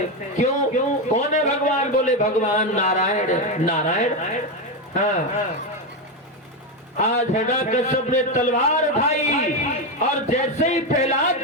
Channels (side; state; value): both; normal; correlation 0.10